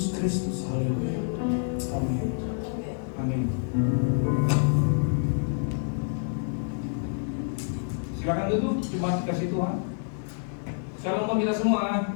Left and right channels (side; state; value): right; silent; digital silence